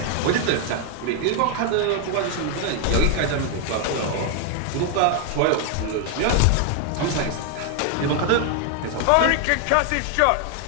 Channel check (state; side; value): different; both; correlation 0.00